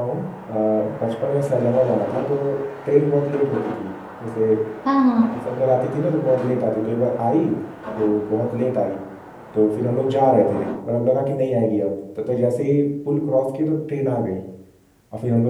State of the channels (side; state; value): both; identical; correlation 1.00